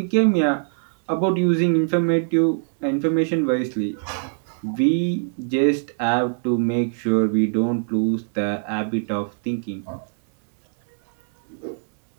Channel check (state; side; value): silent; left; digital silence